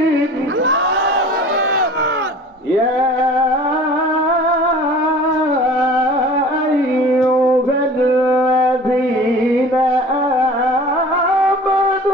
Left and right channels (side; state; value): both; normal; correlation 0.43